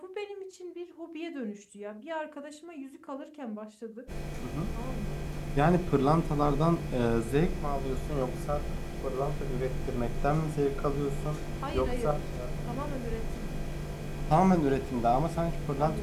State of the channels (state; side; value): identical; both; correlation 1.00